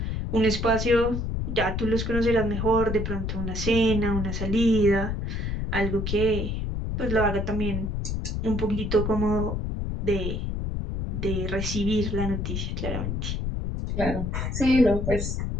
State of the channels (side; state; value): left; noise; rumble, 2 dB below the sound